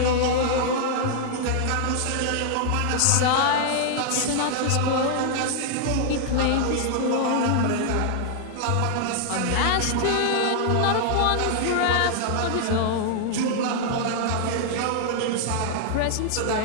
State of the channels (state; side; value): different; both; correlation 0.00